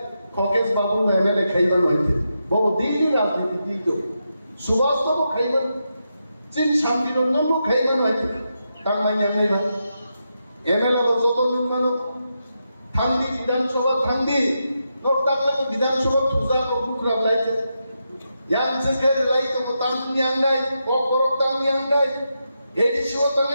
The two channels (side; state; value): both; inverted; correlation -0.86